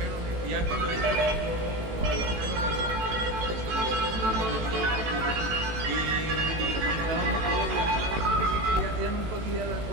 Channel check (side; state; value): left; late; 18 ms